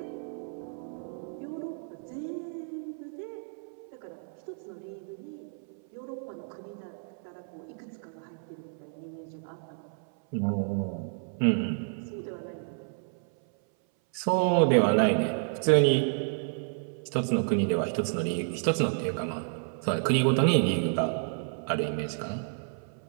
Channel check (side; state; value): left; silent; 57 dB below the other